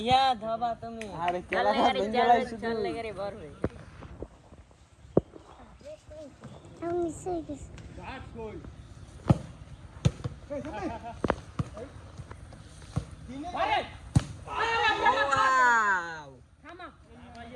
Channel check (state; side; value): identical; both; correlation 1.00